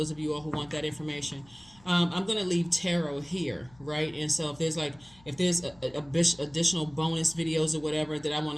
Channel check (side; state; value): left; noise; hum, 26 dB below the sound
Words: of you all who want that information. I'm going to leave tarot here, right? And so if there's additional bonus videos or whatever that I want